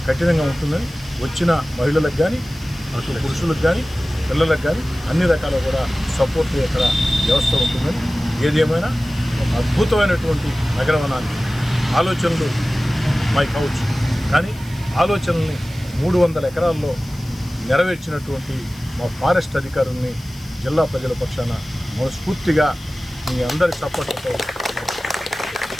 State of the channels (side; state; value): left; noise; hiss, 23 dB below the sound